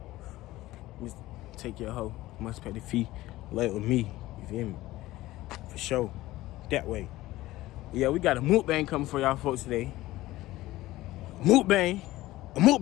Just take your hoe. Must pay the fee. Lay with me. You feel me? For sure. That way. Yeah, we got a mukbang coming for y'all folks today. Mukbang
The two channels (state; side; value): quieter; right; 17.1 dB